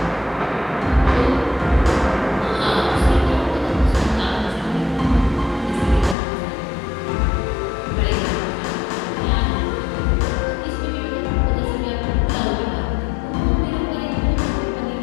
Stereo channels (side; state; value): right; drops out; at 6.2 s